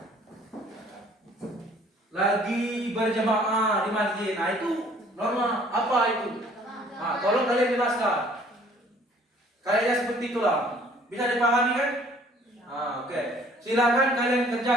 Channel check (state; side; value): normal; both; correlation 0.56